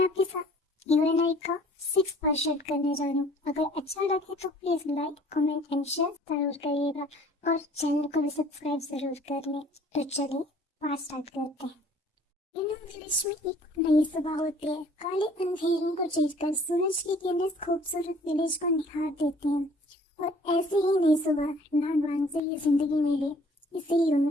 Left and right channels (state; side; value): normal; both; correlation 0.55